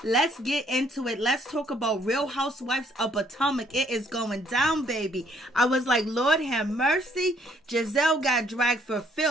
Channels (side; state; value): both; normal; correlation 0.65